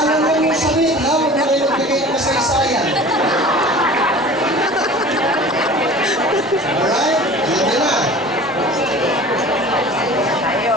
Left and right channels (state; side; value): normal; both; correlation 0.41